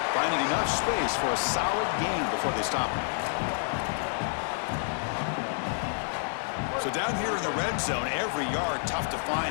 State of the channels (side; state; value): right; silent; digital silence